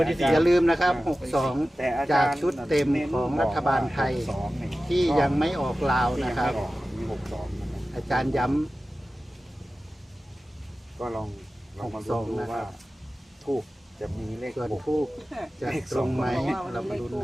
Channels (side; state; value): both; normal; correlation 0.95